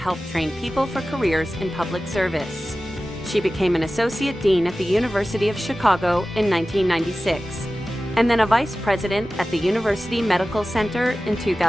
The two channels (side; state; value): both; normal; correlation 0.95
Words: train people for careers in public service. She became an associate dean at the University of Chicago in 1996, and then a vice president at the University Medical Center in